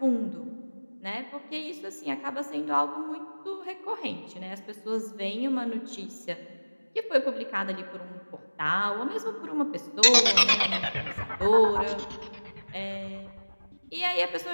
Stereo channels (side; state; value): both; inverted; correlation -1.00